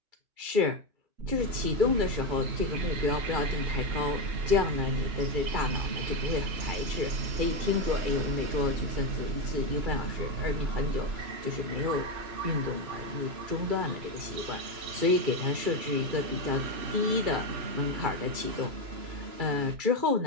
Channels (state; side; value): late; left; 2.3 ms